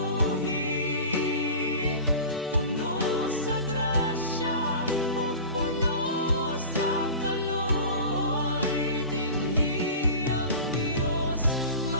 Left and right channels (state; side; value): inverted; both; correlation -0.35